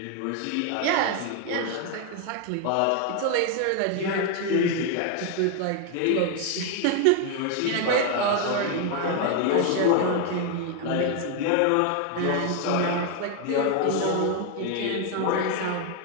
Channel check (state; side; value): different; both; correlation 0.01